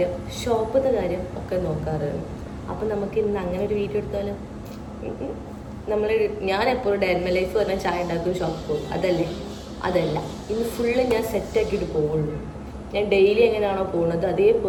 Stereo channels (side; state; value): both; identical; correlation 1.00